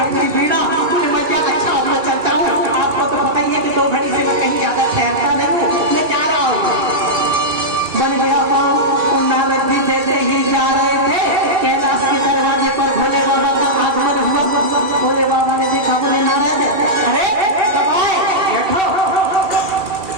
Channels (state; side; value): late; left; 2.6 ms